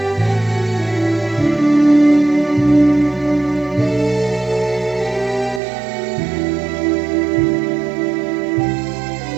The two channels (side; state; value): left; drops out; at 5.6 s